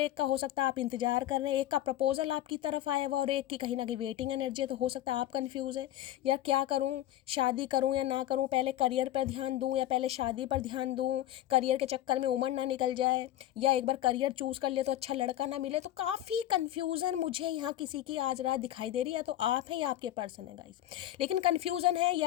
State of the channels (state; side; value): quieter; right; 13.2 dB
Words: एक का हो सकता है आप इंतजार कर रहे हैं, एक का प्रपोजल आपकी तरफ आया हुआ और एक की कहीं ना कहीं वेटिंग एनर्जी है। तो हो सकता है आप कन्फ्यूज है, यार क्या करूँ, शादी करूँ या ना करूँ, पहले करियर पर ध्यान दूँ या पहले शादी पर ध्यान दूँ, करियर के चक्कर में उम्र ना निकल जाए, या एक बार करियर चूज कर ले तो अच्छा लड़का ना मिले। तो काफ़ी कंफ्यूजन मुझे यहाँ किसी की आज रात दिखाई दे रही है, या तो आप हैं या आपके पर्सन है गाइस। लेकिन कंफ्यूजन है,